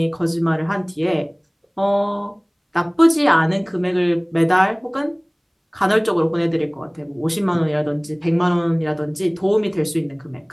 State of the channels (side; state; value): both; identical; correlation 1.00